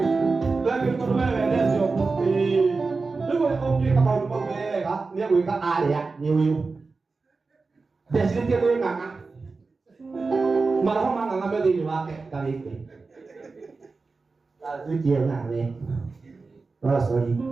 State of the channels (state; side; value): quieter; left; 4.1 dB